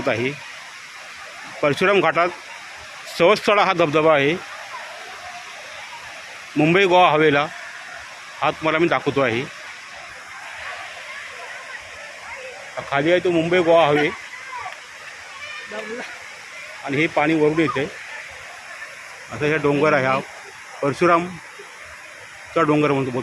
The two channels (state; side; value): identical; both; correlation 1.00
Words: आहे. परशुराम घाटात सवत्सळा हा धबधबा आहे. मुंबई गोवा हवेला हा तुम्हाला मी दाखवतो आहे. खाली आहे तो मुंबई गोवा हवे आणि हे पाणी वरून येते. असं हे डोंगर आहे, हा परशुरामचा डोंगर म्हणतो